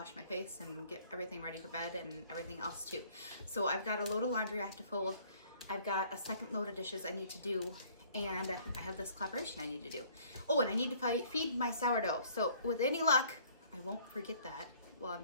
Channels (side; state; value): both; inverted; correlation -0.57